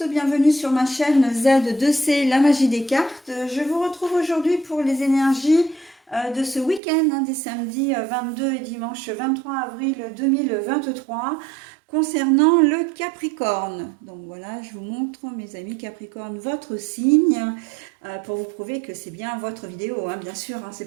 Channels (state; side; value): drops out; left; at 6.8 s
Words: bienvenue sur ma chaîne Z2C, la magie des cartes. Je vous retrouve aujourd'hui pour les énergies de ce week-end, des samedis 22 et dimanche 23 avril 2023, concernant le Capricorne. Donc voilà, je vous montre, mes amis Capricorne, votre signe, pour vous prouver que c'est bien votre vidéo, bien sûr,